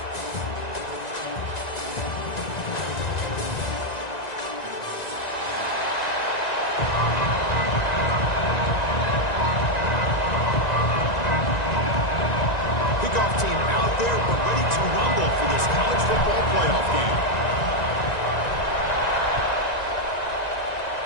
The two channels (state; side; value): late; right; 1.9 ms